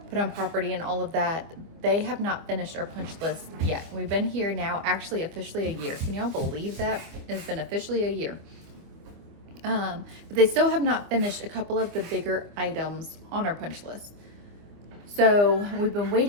put on property and all of that, they have not finished our punch list yet. We've been here now actually officially a year. Can y'all believe that? It's been officially a year. But they still have not finished a couple of the bigger items on our punch list. So we've been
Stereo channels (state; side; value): late; left; 25 ms